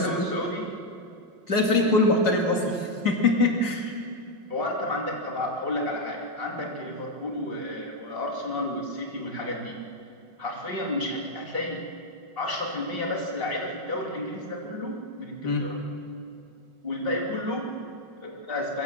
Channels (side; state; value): left; late; 5.4 ms